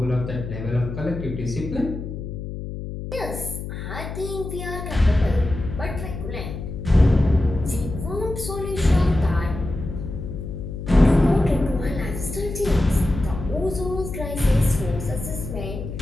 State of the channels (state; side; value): noise; left; hum, 7 dB below the sound